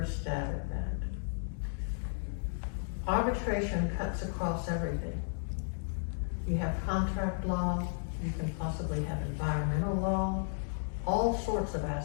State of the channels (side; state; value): right; silent; digital silence